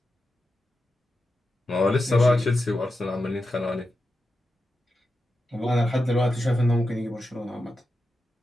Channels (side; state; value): both; normal; correlation 0.90